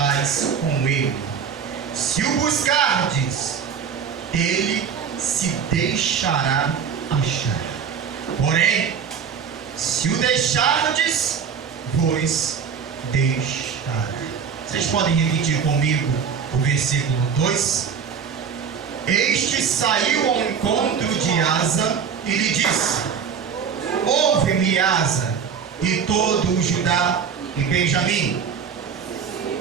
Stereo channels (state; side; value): quieter; left; 6.8 dB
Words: com ele. Se o buscardes, ele se deixará achar. Porém, se o deixardes, vos deixará. Vocês podem repetir comigo o versículo 2? Este saiu ao encontro de Asa e lhe disse: ouve-me, Asa, e todo o Judá e Benjamim.